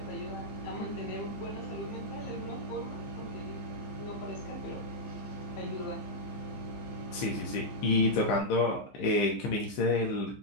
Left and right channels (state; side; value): late; right; 15 ms